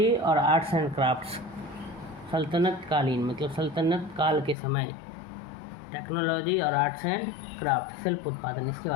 और आर्ट्स एंड क्राफ्ट्स। सल्तनत कालीन मतलब सल्तनत काल के समय, टेक्नोलॉजी और आर्ट्स एंड क्राफ्ट, शिल्प उत्पादन, इसके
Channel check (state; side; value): drops out; right; at 4.5 s